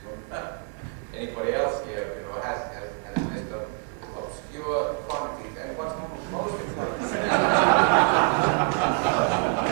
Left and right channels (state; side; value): quieter; left; 34.9 dB